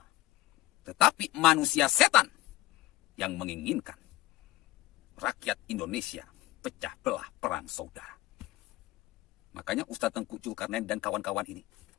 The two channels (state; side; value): quieter; right; 17.2 dB